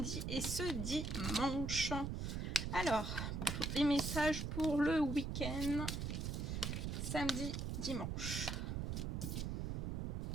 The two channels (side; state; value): right; noise; rumble, 2 dB below the sound